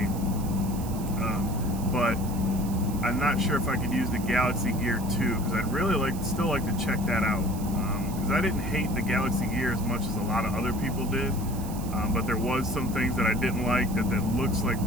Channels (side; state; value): right; noise; hiss, 15 dB below the sound